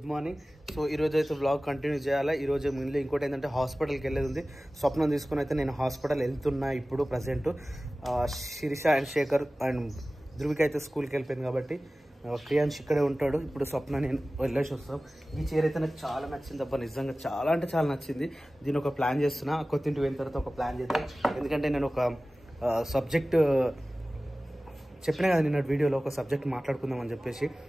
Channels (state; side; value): normal; both; correlation 0.97